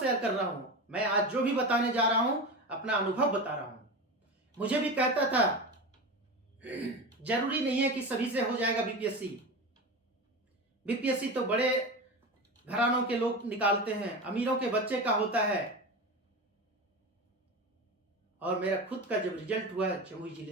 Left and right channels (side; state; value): both; normal; correlation 0.25